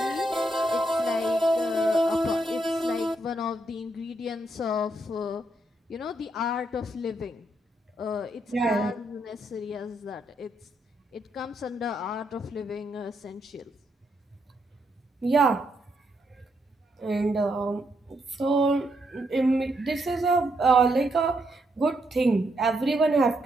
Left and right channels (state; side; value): normal; both; correlation 0.78